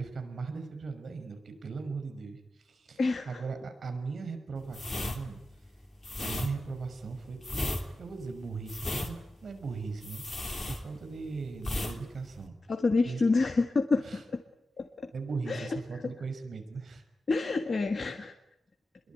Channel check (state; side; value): normal; both; correlation 0.91